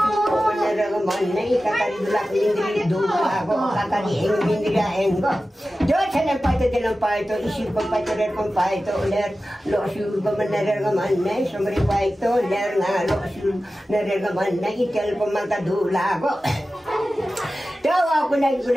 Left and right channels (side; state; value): both; normal; correlation 0.94